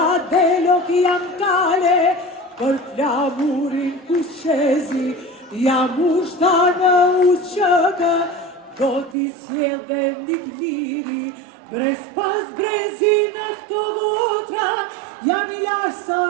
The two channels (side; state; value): left; drops out; at 9.2 s